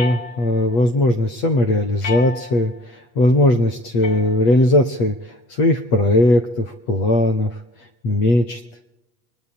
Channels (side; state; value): right; late; 8.3 ms